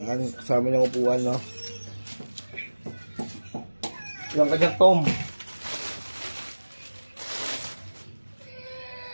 Ayan, kasama niyang upuan, no? Yung kanyang tom.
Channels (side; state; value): both; inverted; correlation -1.00